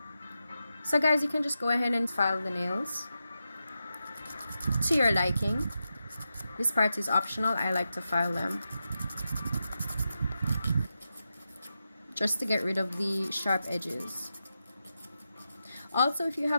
So guys, you can just go ahead and file the nails to your liking. This part is optional. I like to file them just to get rid of the sharp edges. Also, if you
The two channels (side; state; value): both; inverted; correlation -0.89